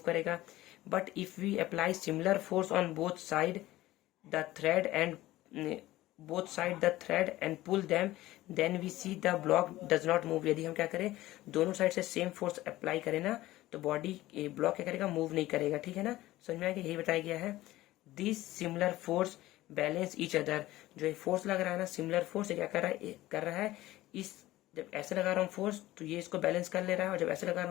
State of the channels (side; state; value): right; quieter; 16.6 dB